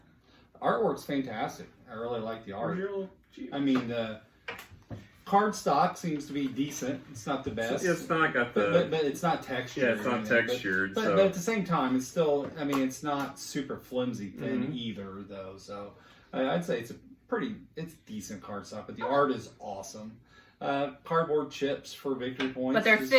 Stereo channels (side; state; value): both; identical; correlation 1.00